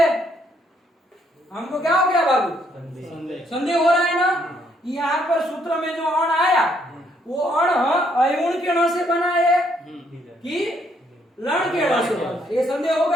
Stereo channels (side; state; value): both; normal; correlation 0.70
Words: हमको क्या हो गया बाबू? संदेह हो रहा है ना। यहाँ पर सूत्र में जो अण आया वो अण अयुण के ण से बना है कि लण के ण से बना? ये संदेह